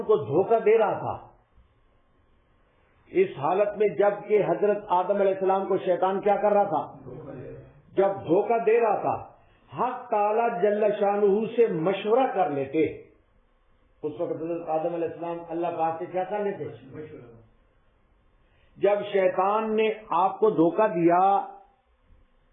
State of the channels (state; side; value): identical; both; correlation 1.00